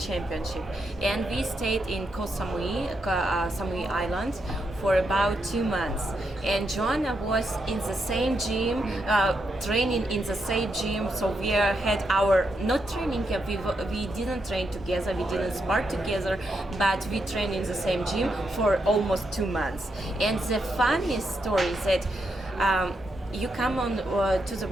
And we stayed in Koh Samui Island for about 2 months. And Joanna was in the same gym, training in the same gym. So we had our, not training camp, we didn't train together, we didn't spar together, but we trained in the same gym for almost 2 months. And the funniest story is that you come on to the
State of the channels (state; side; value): normal; both; correlation 0.82